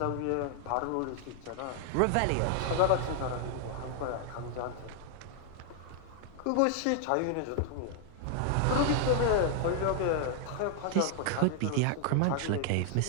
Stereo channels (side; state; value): both; different; correlation 0.00